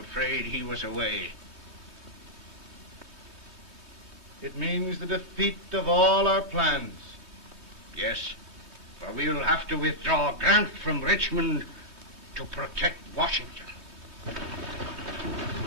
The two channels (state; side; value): late; right; 2.2 ms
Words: he was away. It means the defeat of all our plans. Yes, for we'll have to withdraw Grant from Richmond to protect Washington.